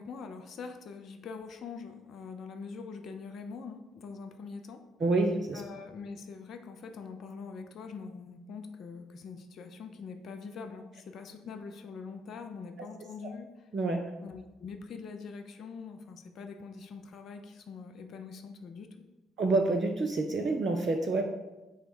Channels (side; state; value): both; normal; correlation 0.70